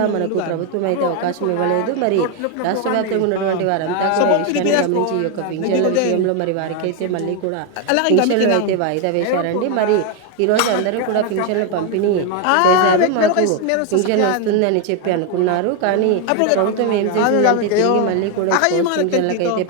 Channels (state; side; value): different; both; correlation 0.01